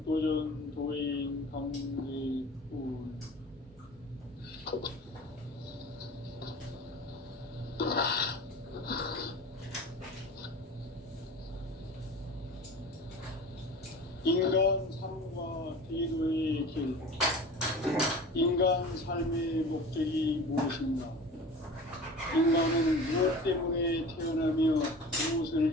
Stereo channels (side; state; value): both; normal; correlation 0.38